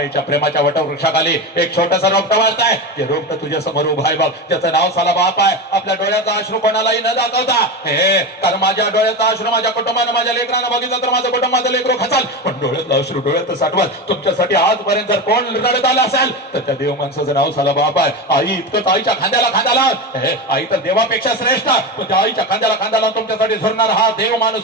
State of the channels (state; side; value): normal; both; correlation 0.21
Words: प्रेमाच्या वटवृक्षाखाली एक छोटंसं रोपटं वाढताय. ते रोपटं तुझ्या समोर उभा आहे बघ, त्याचं नाव साला बाप आहे. आपल्या डोळ्याचा अश्रू कोणालाही न दाखवता, कारण माझ्या डोळ्याचा अश्रू माझ्या कुटुंबानं, माझ्या लेकरानं बघितलं तर माझं कुटुंब, माझं लेकरू खचाल. पण डोळ्यातला अश्रू डोळ्यात साठवत. तुमच्यासाठी आजपर्यंत जर कोण रडत आलं असेल तर त्या देव माणसाचं नाव साला बाप आहे. आई इतकंच आईच्या खांद्याला खांद्याला, आई तर देवापेक्षा श्रेष्ठ, पण त्या आईच्या खांद्याला खांद्याला तुमच्यासाठी झुरणार हा देव